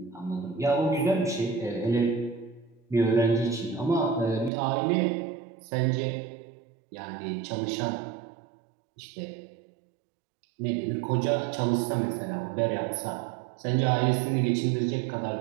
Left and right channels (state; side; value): drops out; left; at 4.5 s